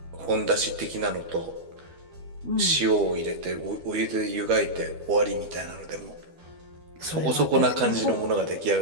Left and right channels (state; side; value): late; left; 12 ms